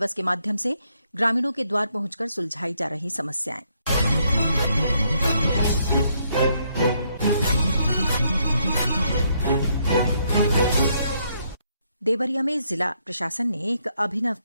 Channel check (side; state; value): both; inverted; correlation -0.73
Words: के माध्यम से ग्रामीणों के द्वार पहुंचकर सुलझाई जा रही समस्याएं। देवरिया में जिला प्रशासन ने एक अभिनव